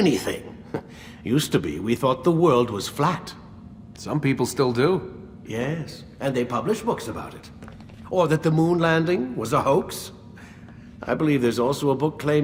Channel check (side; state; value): both; identical; correlation 1.00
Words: Used to be, we thought the world was flat. Some people still do. Yes, and they publish books about it. Or that the moon landing was a hoax. I believe there's also a book